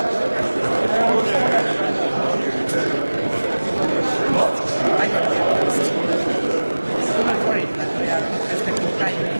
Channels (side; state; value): both; inverted; correlation -1.00